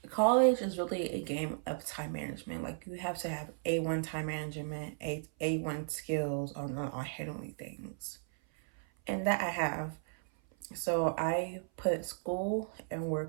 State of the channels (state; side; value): silent; left; 54 dB below the other